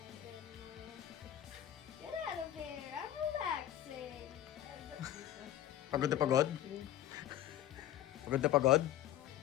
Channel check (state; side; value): quieter; right; 12.2 dB